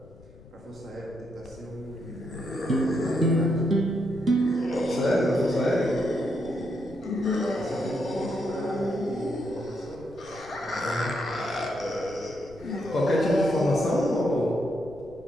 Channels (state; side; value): noise; left; rumble, 22 dB below the sound